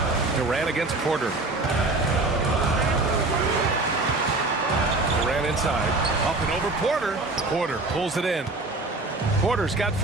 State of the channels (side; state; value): left; quieter; 3.1 dB